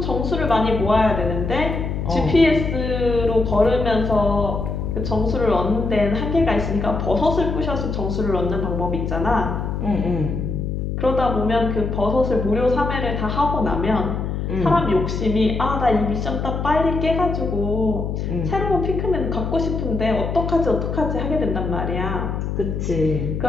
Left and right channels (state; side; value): noise; left; hum, 3 dB below the sound